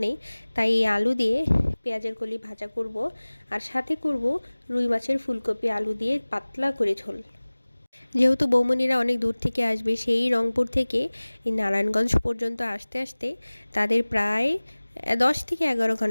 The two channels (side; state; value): both; inverted; correlation -1.00